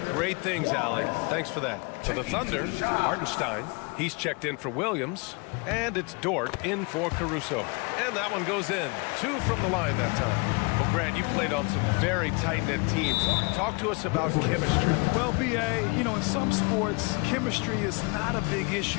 great things, Allie. Thanks for that. For the Thunder, Hartenstein. He's checked in for Williams. And it's Dort in for Caruso. And that one goes in. 2 from the line that time. Well, Grant, you played on some very tight-knit teams. Talk to us about chemistry. Well, B.A., in some sports, chemistry is not a big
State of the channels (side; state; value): right; quieter; 30.0 dB